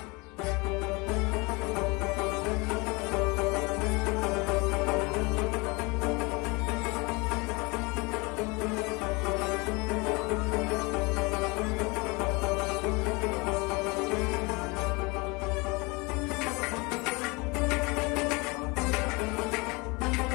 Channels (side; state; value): right; quieter; 26.9 dB